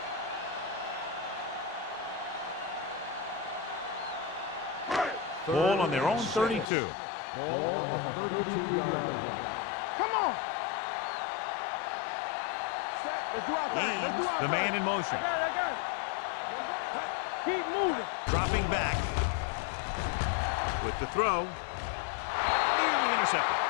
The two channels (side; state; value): right; drops out; at 6.7 s